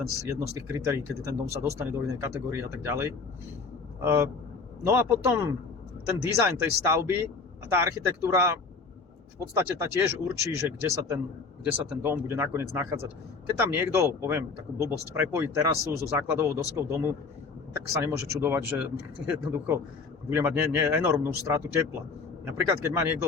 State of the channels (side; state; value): right; quieter; 4.5 dB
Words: jedno z tých kritérií, kedy ten dom sa dostane do inej kategórie a tak ďalej. No a potom ten dizajn tej stavby a tá architektúra v podstate tá tiež určí, že kde sa ten dom bude nakoniec nachádzať. Keď tam niekto, poviem takú blbosť, prepojí terasu so základovou doskou domu, tak sa nemôže čudovať, že jednoducho bude mať enormnú stratu tepla. Napríklad, keď má niekto